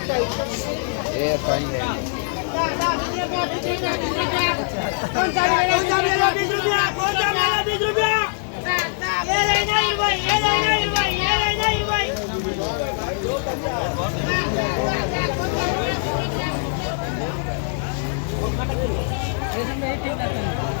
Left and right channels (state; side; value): silent; right; digital silence